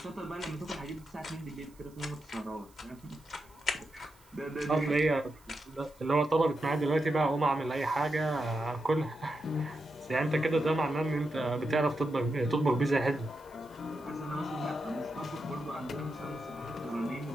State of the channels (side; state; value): right; noise; hiss, 29 dB below the sound